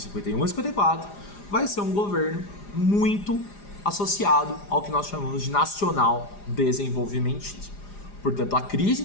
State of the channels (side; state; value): right; late; 4.9 ms